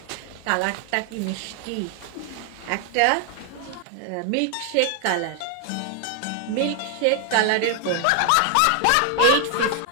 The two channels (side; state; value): both; different; correlation 0.00